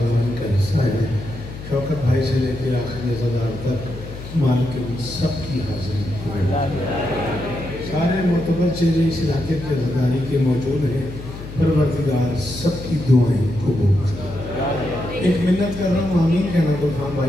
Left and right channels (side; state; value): left; noise; hum, 12 dB below the sound